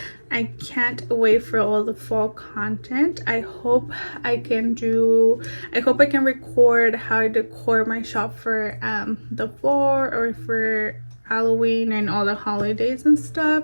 I can't wait for all the fall content. I hope I can record how I decor my shop for the fall or for Halloween and all the holidays and stuff.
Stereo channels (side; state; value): both; inverted; correlation -1.00